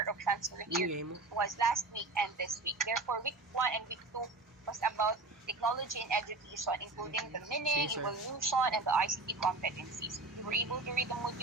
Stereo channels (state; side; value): quieter; left; 3.4 dB